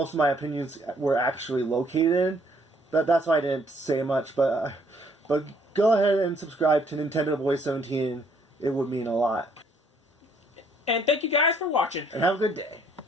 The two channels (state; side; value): normal; both; correlation 0.65